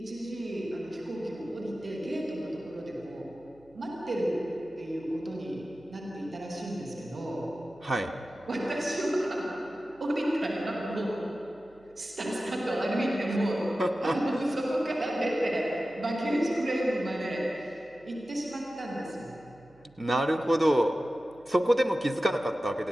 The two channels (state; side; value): noise; right; hum, 30 dB below the sound